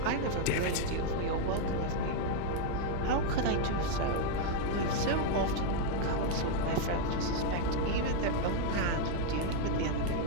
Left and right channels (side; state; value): both; different; correlation 0.00